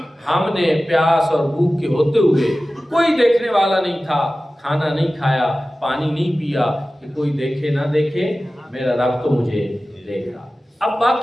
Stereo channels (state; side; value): normal; both; correlation 0.96